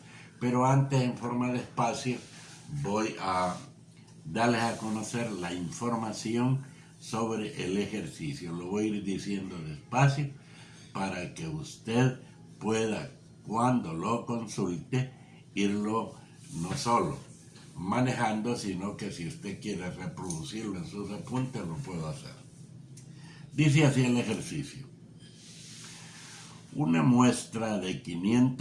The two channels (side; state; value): both; identical; correlation 1.00